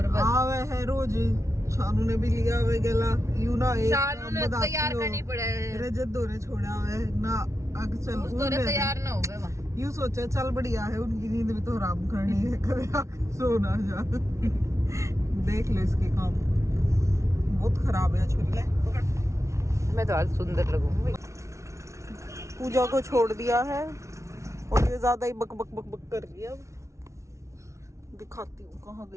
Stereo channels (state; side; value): late; left; 0.14 ms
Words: बस आवे है रोज। शानू ने भी लिया हुआ गला यू ना, एक शानू ने तैयार करनी पड़े, रजत दोरे छोड़ा हुआ है ना, अग चल दोरे तैयार ना हो गए। यू सोचा चल बढ़िया है, उनकी नींद भी तो आराम करनी है, कभी आके सो ना जा। देख लो इसके काम, बहुत खराब है छुरी। मैं तो आज सुंदर लगूंगी। पूजा को छोड़ दिया है और ये ज्यादा ही बक बक बक बक कर रही है। अब दिखाती हूँ कहाँ